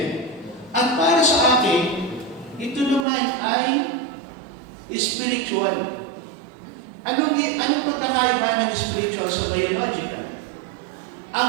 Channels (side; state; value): left; drops out; at 3.1 s